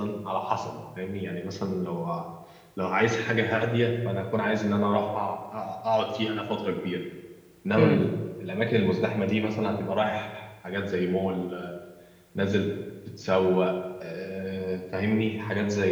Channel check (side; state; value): both; identical; correlation 1.00